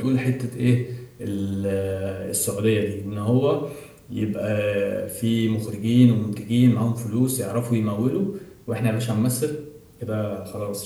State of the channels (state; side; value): identical; both; correlation 1.00